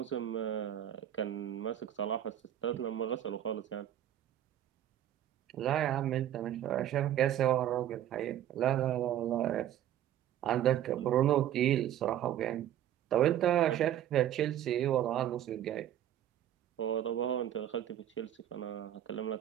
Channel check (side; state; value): left; quieter; 11.4 dB